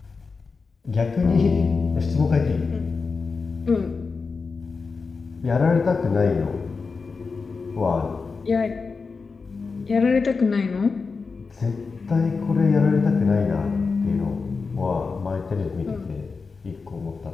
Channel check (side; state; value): right; quieter; 4.6 dB